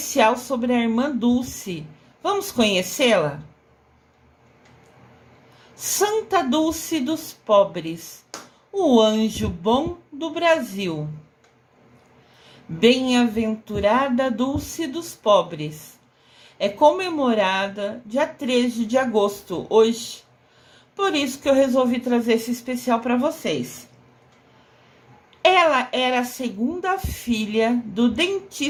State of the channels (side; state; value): both; identical; correlation 1.00